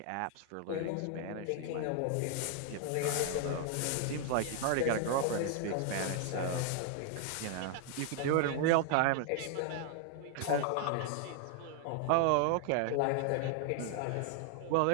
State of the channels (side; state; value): both; different; correlation 0.00